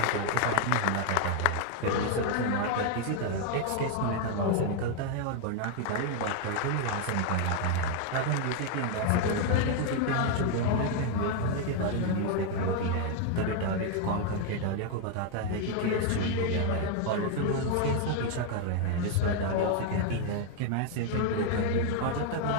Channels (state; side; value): different; both; correlation 0.01